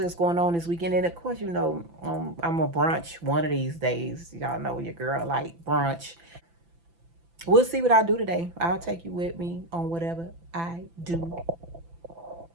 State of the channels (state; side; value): late; left; 5.9 ms